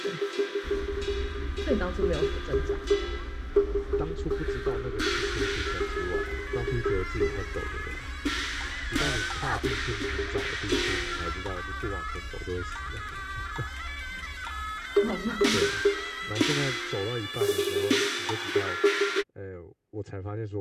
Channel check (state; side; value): identical; both; correlation 1.00